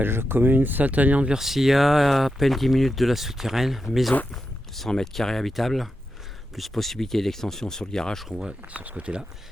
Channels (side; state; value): both; normal; correlation 0.88